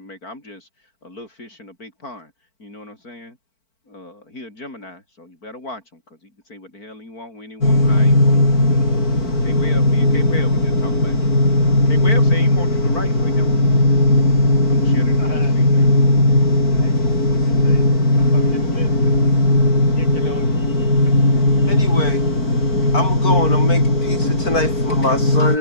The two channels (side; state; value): right; late; 4.5 ms